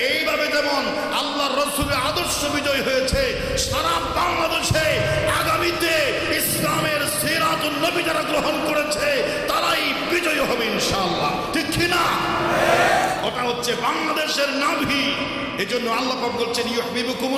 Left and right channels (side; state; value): both; identical; correlation 1.00